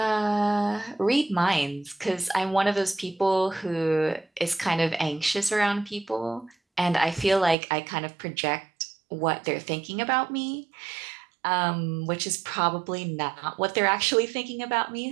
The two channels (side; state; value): left; drops out; at 7.6 s